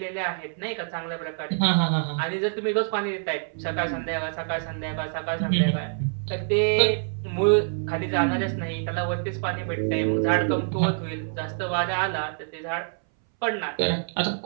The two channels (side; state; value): left; silent; 61 dB below the other